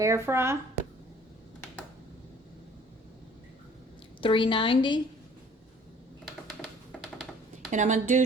fry, 390, and I'm going to do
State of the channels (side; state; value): both; normal; correlation 0.53